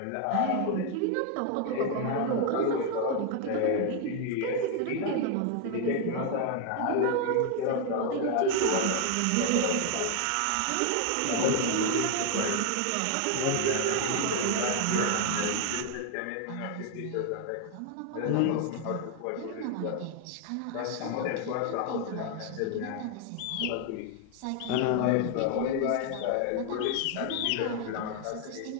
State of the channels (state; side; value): different; both; correlation 0.00